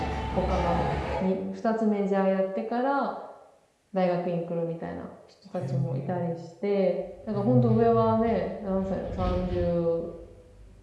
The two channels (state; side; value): identical; both; correlation 1.00